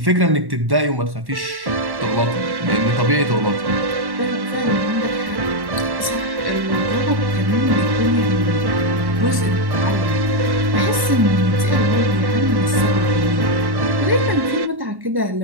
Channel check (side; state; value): left; late; 1.1 ms